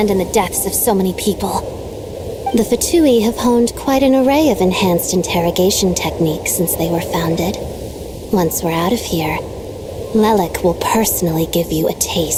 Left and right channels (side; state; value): both; identical; correlation 1.00